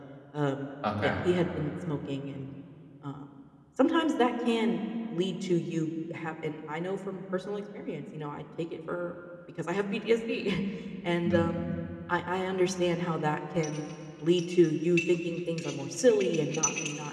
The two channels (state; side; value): identical; both; correlation 1.00